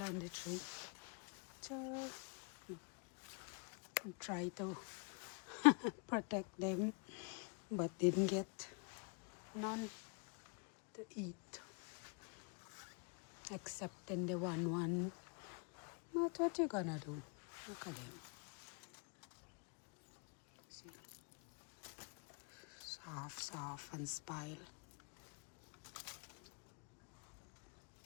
on the tree. So try to protect them, but didn't get none to eat. Except in the one. But what you gonna do? Look at them. See? Soft and spile.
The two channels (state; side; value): quieter; right; 37.7 dB